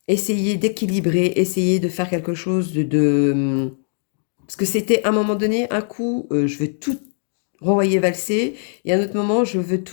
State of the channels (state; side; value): silent; right; digital silence